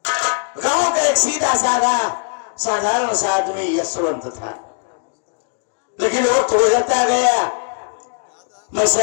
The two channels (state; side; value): silent; right; digital silence